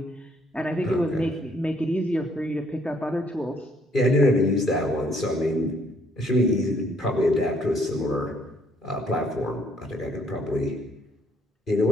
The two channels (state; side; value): normal; both; correlation 0.66